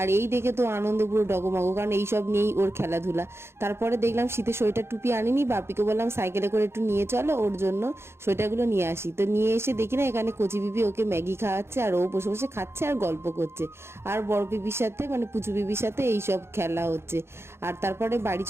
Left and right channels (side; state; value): left; late; 0.12 ms